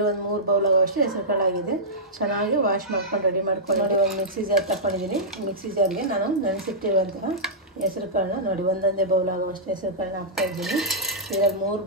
3 ಬೌಲ್ ಆಗೋವಷ್ಟು ಹೆಸರು ಕಾಳು ಆಗಿದೆ. ಚೆನ್ನಾಗಿ ವಾಶ್ ಮಾಡ್ಕೊಂಡು ರೆಡಿ ಮಾಡ್ಕೊಂಡು ನೋಡಿ, ಒಂದು ಮಿಕ್ಸಿ ಜಾರ್ ತಗೊಂಡಿದ್ದೀನಿ. ಮಿಕ್ಸಿ ಜಾರ್ಗೆ ನಾನು ನೆನೆಸಿಟ್ಟಿರುವಂತಹ ಹೆಸರು ಕಾಳನ್ನ ನೋಡಿ, ಒಂದೊಂದೇ ಬೌಲ್ ಆಗೋವಷ್ಟು ಹೆಸರು ಕಾಳನ್ನ ಹಾಕ್ತಾಯಿದ್ದೀನಿ. ಇದರಲ್ಲಿ 3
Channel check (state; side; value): normal; both; correlation -0.13